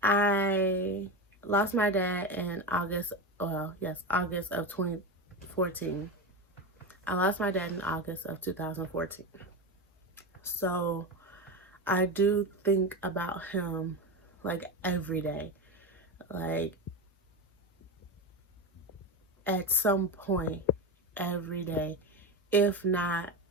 I lost my dad in August of 2014. I lost my dad in August of 2014. So I do think about him like every day. Like at some point every day, if not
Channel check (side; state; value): both; normal; correlation 0.19